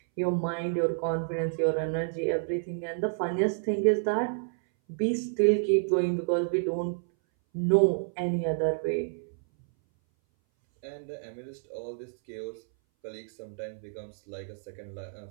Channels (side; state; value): left; silent; 58 dB below the other